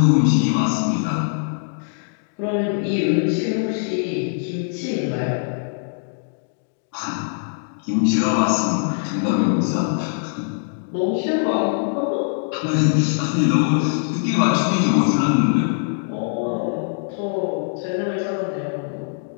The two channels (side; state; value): right; silent; digital silence